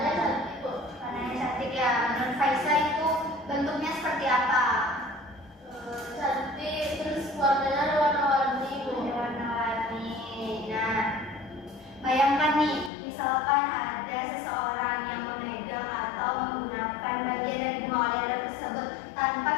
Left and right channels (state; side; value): drops out; right; at 12.9 s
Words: cantik, Bu. Warnanya cantik ya. Menurut Faisal itu bentuknya seperti apa? Cantik, terus warnanya ada warna-warni, Bu. Warna-warni. Nah, bayangkan nih, misalkan ada seseorang yang memegang atau menggunakan bagian dari bunga oleander tersebut tanpa